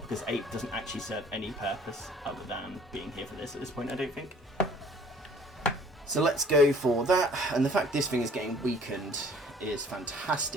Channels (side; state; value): both; normal; correlation 0.54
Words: Ape doesn't actually serve any purpose other than being here for this at this point, I don't think. So let's go for that, and the fact this thing is getting weakened is